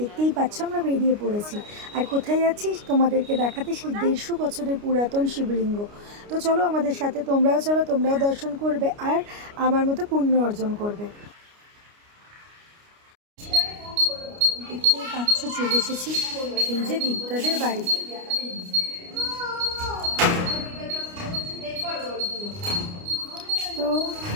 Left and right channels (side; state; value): left; late; 29 ms